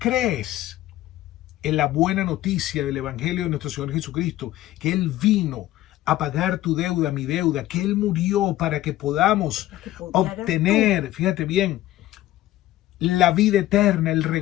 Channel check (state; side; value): quieter; right; 15.0 dB